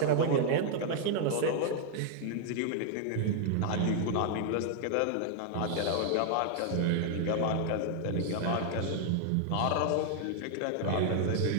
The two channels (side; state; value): both; different; correlation 0.00